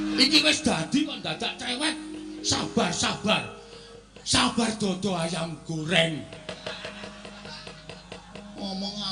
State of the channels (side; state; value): both; identical; correlation 1.00